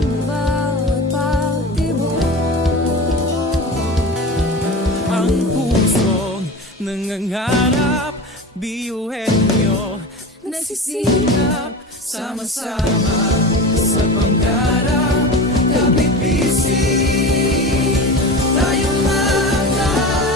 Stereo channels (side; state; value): both; normal; correlation 0.30